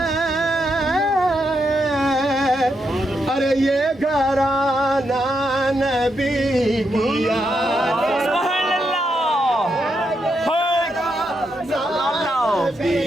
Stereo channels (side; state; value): both; normal; correlation 0.82